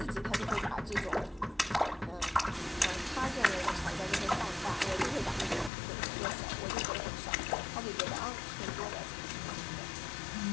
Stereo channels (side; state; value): right; drops out; at 5.7 s